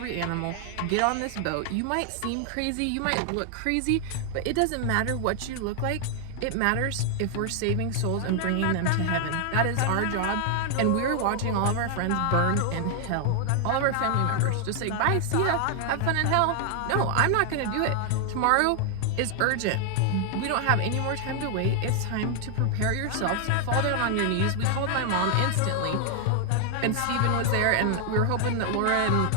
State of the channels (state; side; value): different; both; correlation 0.00